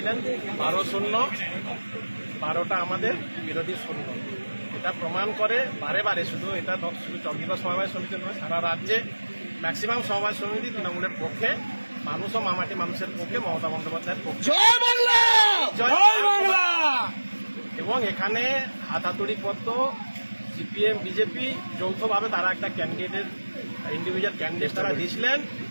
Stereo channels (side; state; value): both; inverted; correlation -1.00